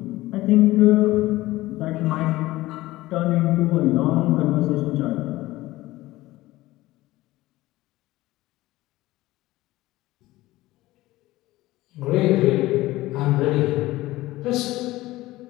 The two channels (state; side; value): quieter; right; 17.9 dB